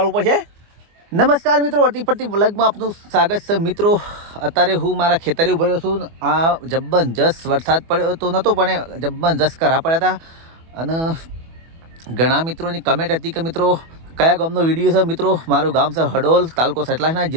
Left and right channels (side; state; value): left; late; 24 ms